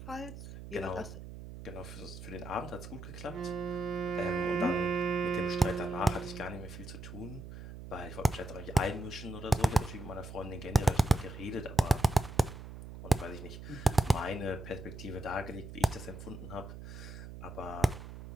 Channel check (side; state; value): right; noise; hum, 12 dB below the sound